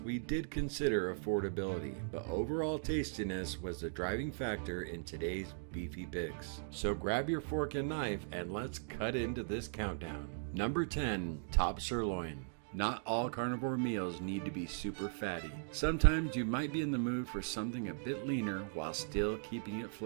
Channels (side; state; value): left; silent; digital silence